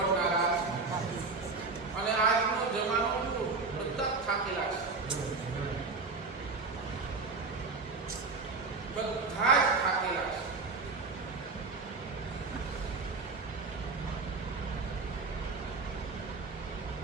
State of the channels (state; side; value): quieter; left; 4.0 dB